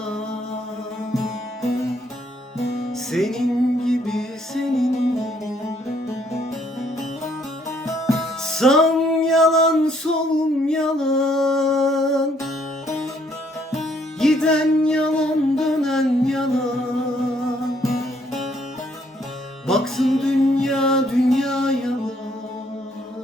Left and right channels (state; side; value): normal; both; correlation 0.67